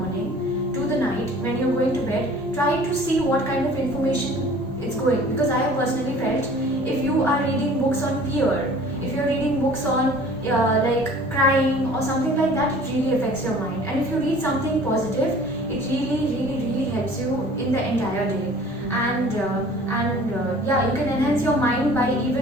to the night when you're going to bed, try to see what kind of information it's going. Because I have personally felt, if you are reading books on fear, if you're reading books on like crying or something like that, it really affects your mind. And if you read something positive, it really helps you in the entire day. And yeah, you can enhance your mind by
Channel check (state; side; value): normal; both; correlation 0.48